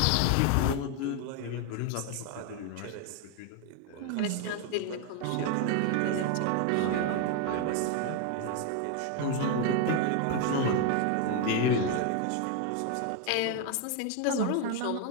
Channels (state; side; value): different; both; correlation 0.01